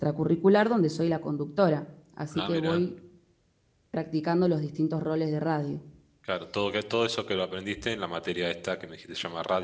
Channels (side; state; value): both; identical; correlation 1.00